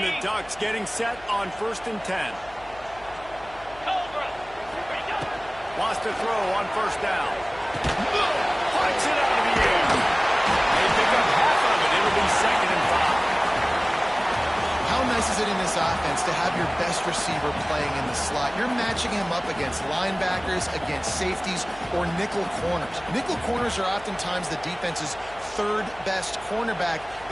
Ducks getting set on 1st and 10. Wants to throw on 1st down. Flies it out of the air. They pick up half of it. It'll be 2nd and 5. How nice is it in this offense to have your best receiver playing in the slot? You're matching him up against linebackers, against safeties, or nickel corners. Nickel corners are oftentimes the defense's third best cornerback.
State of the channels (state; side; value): noise; left; hum, 22 dB below the sound